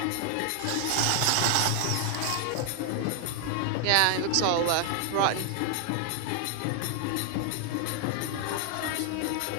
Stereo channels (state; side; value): different; both; correlation 0.00